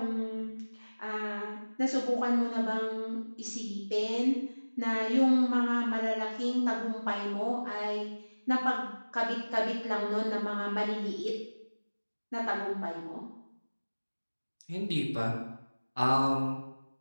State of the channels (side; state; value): both; inverted; correlation -1.00